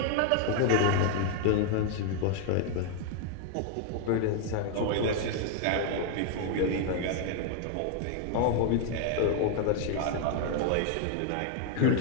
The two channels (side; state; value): both; different; correlation 0.00